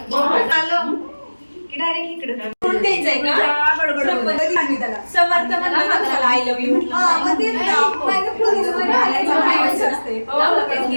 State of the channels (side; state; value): both; inverted; correlation -1.00